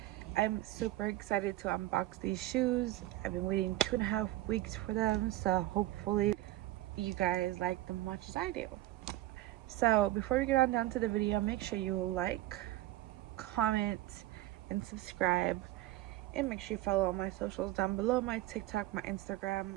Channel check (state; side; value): quieter; left; 16.1 dB